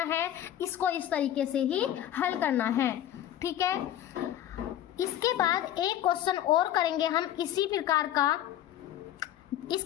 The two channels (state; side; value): quieter; right; 11.8 dB